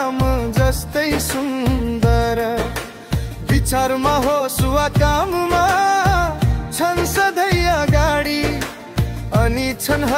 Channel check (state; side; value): identical; both; correlation 1.00